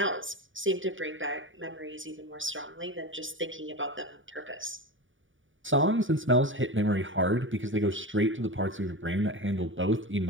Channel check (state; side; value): late; left; 0.57 ms